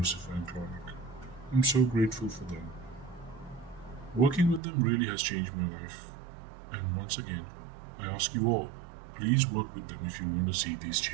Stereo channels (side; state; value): left; drops out; at 4.6 s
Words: and Clauneck. I'm so grateful for them. Working with them really has changed my life. And once again, I ask you all, please work with them if you want to see these